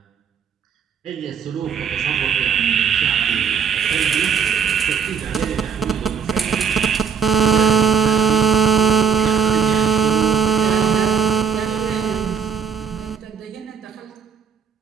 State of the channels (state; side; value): quieter; left; 6.7 dB